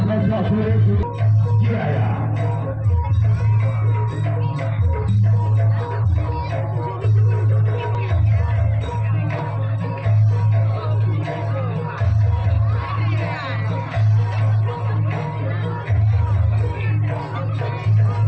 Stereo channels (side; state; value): both; identical; correlation 1.00